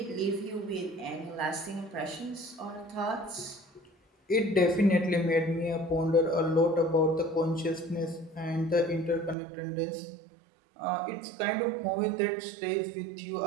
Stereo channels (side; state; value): left; drops out; at 9.3 s